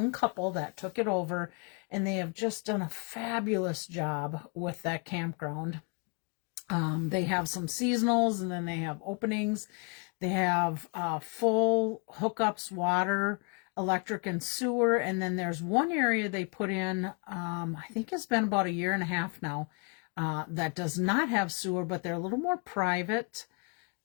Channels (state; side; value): quieter; right; 33.9 dB